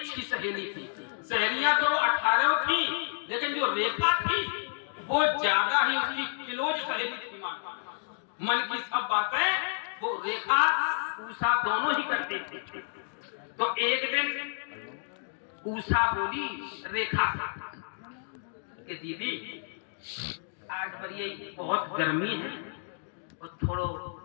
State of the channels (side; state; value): right; silent; digital silence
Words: सहेली थी। सहेलियां तो 18 थी, लेकिन जो रेखा थी वो ज्यादा ही उसकी क्लोज सहेली थी। मन की सब बातें वो रेखा ऊषा दोनों ही करती थी। तो एक दिन ऊषा बोली रेखा कि दीदी आज बड़ी बहुत गर्मी है और थोड़ो